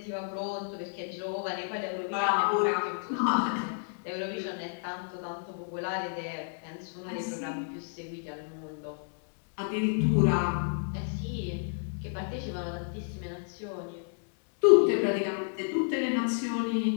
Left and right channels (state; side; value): silent; right; digital silence